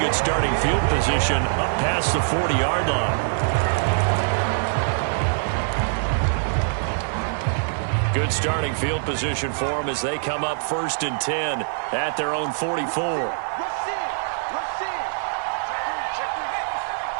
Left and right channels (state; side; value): silent; left; 62 dB below the other